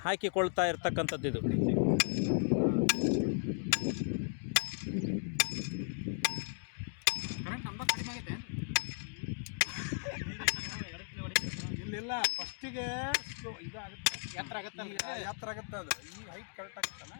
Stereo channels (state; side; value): silent; right; digital silence